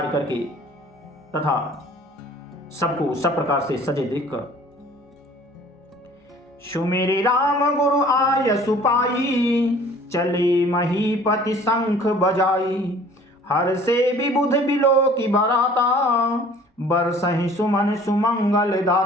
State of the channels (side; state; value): both; normal; correlation 0.50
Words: करके तथा सबको सब प्रकार से सजे देखकर। सुमेरे राम गुरु आय सुपाई, चले महीपति शंख बजाई। हर से विबुध बिलो की बराता, बरसहि सुमन सुमंगल